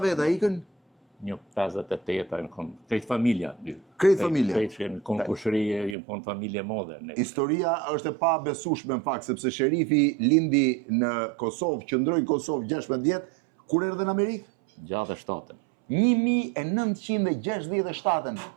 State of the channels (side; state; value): left; drops out; at 6.0 s